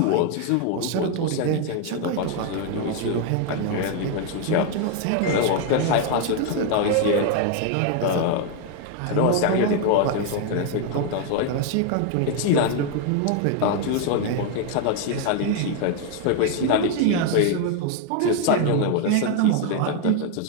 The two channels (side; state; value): both; different; correlation 0.01